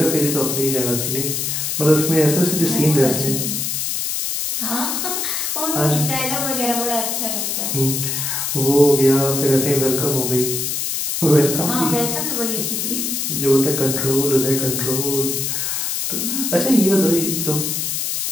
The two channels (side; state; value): left; noise; hiss, 1 dB below the sound